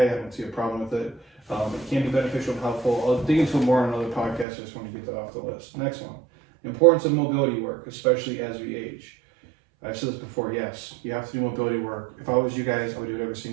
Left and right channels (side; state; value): left; drops out; at 4.5 s